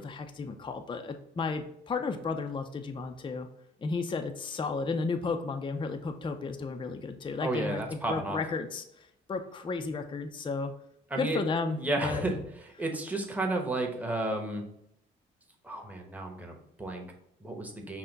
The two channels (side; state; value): both; normal; correlation 0.61